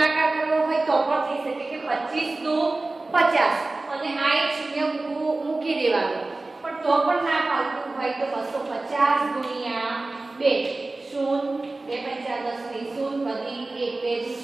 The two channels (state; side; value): quieter; left; 3.2 dB